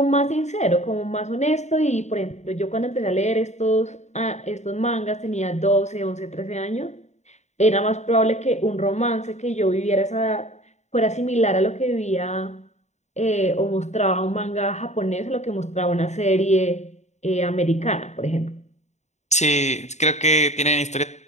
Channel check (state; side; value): late; right; 0.33 ms